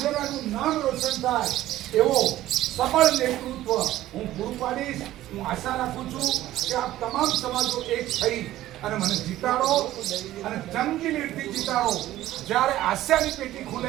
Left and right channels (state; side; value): quieter; left; 14.5 dB